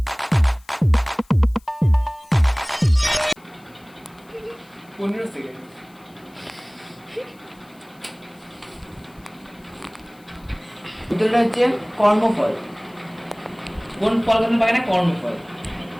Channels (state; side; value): noise; left; hiss, 30 dB below the sound